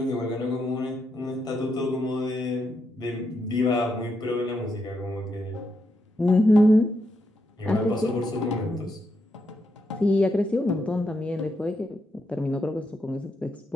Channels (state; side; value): normal; both; correlation 0.81